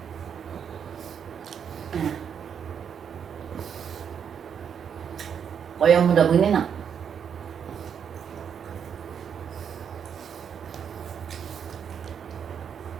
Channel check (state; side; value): quieter; left; 7.7 dB